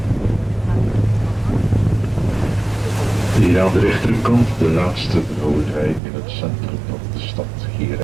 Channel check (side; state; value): left; drops out; at 6.0 s